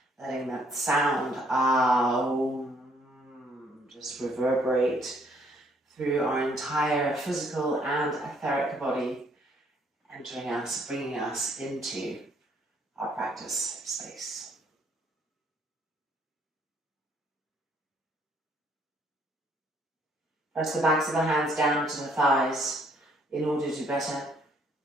letting that sound Om just reverberate through our entire physical and etheric body, entering us, bringing us into our practice space. Press the backs of the hands down to the thighs in order to better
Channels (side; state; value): both; normal; correlation 0.66